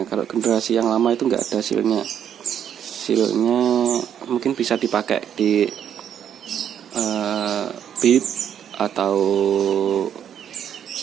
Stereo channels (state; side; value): quieter; left; 9.2 dB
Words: Kalau generasi yang lama itu nggak ada silnya. Silnya mungkin bisa dipakai di Beat atau